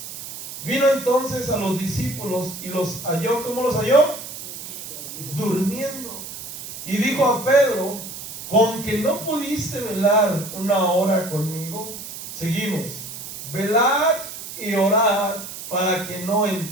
Vino entonces a los discípulos y los halló. ¿Cómo los halló? Durmiendo. Y dijo a Pedro: ¿con que no pudiste velar una hora conmigo? Seguimos. Velad y orad para que no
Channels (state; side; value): noise; right; hiss, 10 dB below the sound